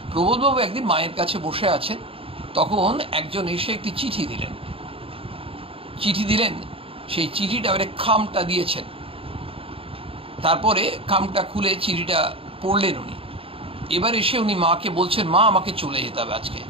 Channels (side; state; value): left; late; 0.27 ms